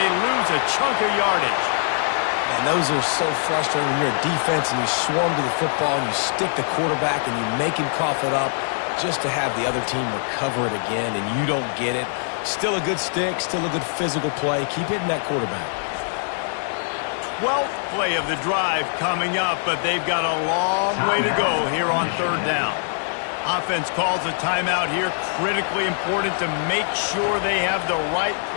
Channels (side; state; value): right; silent; 63 dB below the other